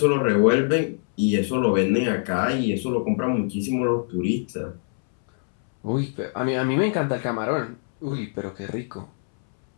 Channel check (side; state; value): right; silent; 63 dB below the other